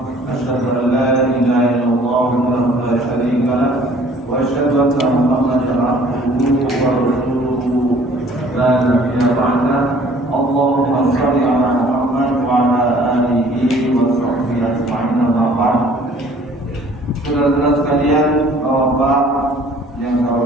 Asyhadu an la ilaha illallah wahdahu la syarika lah wa asyhadu anna Muhammadan abduhu wa rasuluhu la nabiyya ba'dah. Allahumma shalli ala Muhammad wa ala alihi wa sahbihi ajma'in. Amma ba'd. Saudara-saudara sekalian, Bapak yang saya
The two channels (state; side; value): normal; both; correlation 0.54